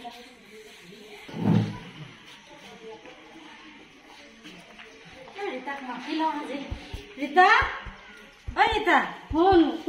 ৰীতা ঐ ৰীতা ফোন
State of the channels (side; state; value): both; identical; correlation 1.00